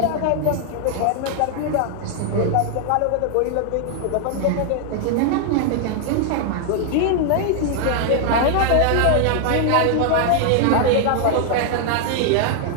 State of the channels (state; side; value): different; both; correlation 0.00